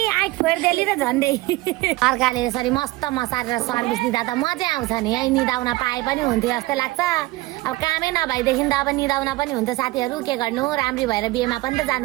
आइ फोर्देली र झन्डै अर्काले यसरी मस्त मसारेर सर्भिस दिँदा त मजा आउँछ नि है निदाउन पाए पनि हुन्थ्यो जस्तै लाग्छ अब कामै नभएदेखि त अब निदाउन पनि हुन्छ साथीहरू के गर्नु राम्री भएर बिहेमा पनि त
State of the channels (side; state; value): left; quieter; 19.7 dB